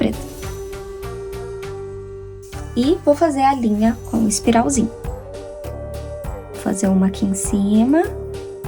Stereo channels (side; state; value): both; identical; correlation 1.00